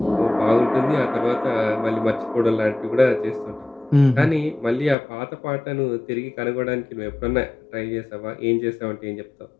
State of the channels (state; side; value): drops out; right; at 5.0 s